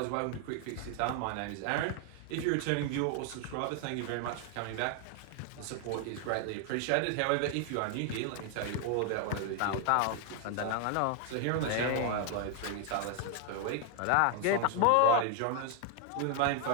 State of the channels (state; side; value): different; both; correlation 0.00